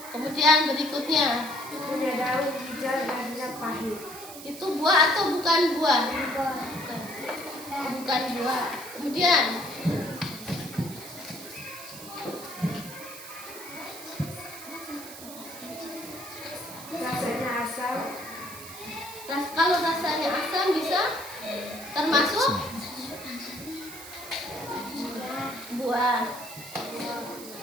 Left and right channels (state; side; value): noise; right; hiss, 13 dB below the sound